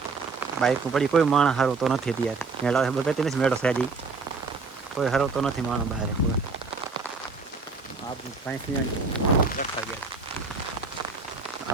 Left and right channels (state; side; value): quieter; left; 4.3 dB